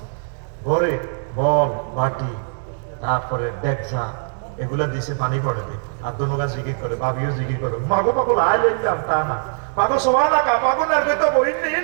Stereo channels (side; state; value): left; silent; digital silence